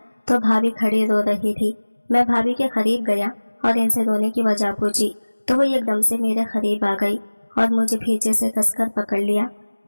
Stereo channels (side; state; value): both; inverted; correlation -1.00